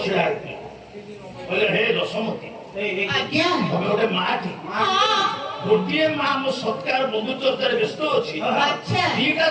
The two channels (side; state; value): both; identical; correlation 1.00